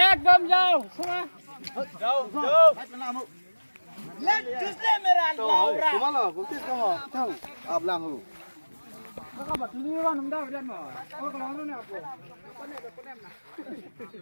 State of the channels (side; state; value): both; inverted; correlation -1.00